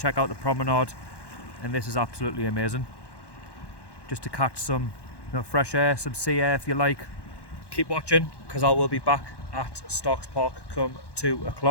out the promenade, and this is absolutely amazing. Just to catch some fresh air, some sea air if you like. Keep watching, because I will be back at Starks Park come 2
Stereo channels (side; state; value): right; late; 1.1 ms